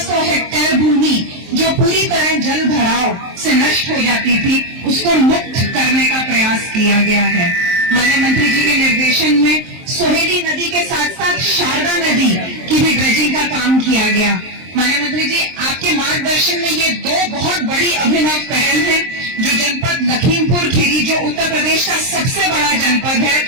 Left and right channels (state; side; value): late; left; 23 ms